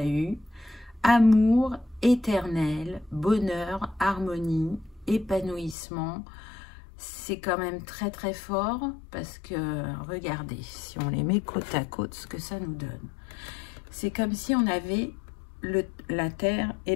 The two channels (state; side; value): drops out; right; at 5.8 s